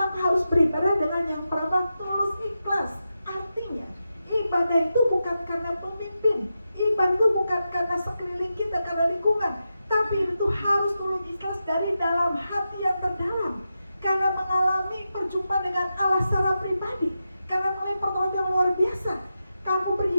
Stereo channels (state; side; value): inverted; both; correlation -0.89